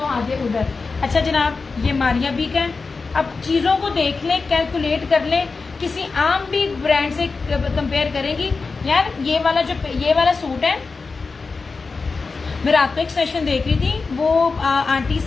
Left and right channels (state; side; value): quieter; right; 4.3 dB